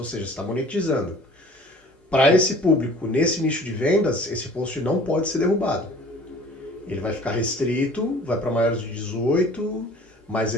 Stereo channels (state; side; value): normal; both; correlation 0.48